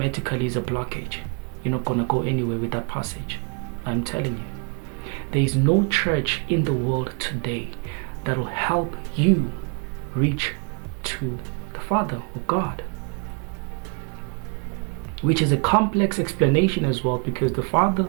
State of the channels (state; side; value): quieter; left; 36.0 dB